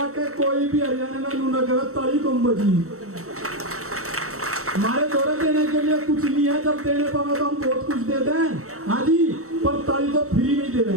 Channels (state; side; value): late; left; 0.64 ms